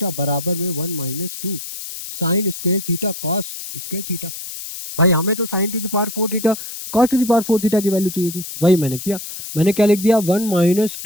बराबर में 1 minus 2 sign square theta cos square theta. भाई हमें तो sign to the power 4 theta cos to the power 4 theta की वैल्यू चाहिए थी, वही मैंने किया, मैंने क्या लिख दिया, 1 minus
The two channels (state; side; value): noise; left; hiss, 9 dB below the sound